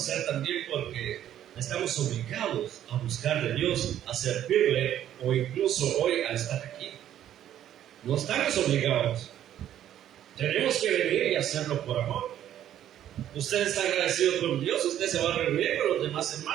también porque estamos obligados a buscar de Dios, a servirle, o incluso hoy a estar aquí. No estamos obligados, tenemos que venir y hacerlo por amor. Usted está agradecido con Dios, usted se va a reunir con los demás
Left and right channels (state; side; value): quieter; left; 11.3 dB